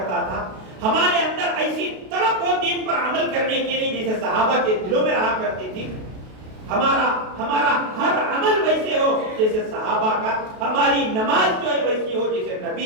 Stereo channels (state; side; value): late; left; 32 ms